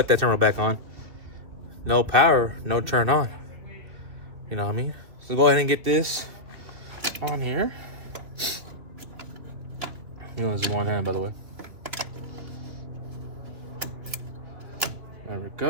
that terminal back on. no power, no turn on. You know what I mean? So go ahead and get this on here. You know, this is one hand, by the way. There we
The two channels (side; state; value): left; late; 2.6 ms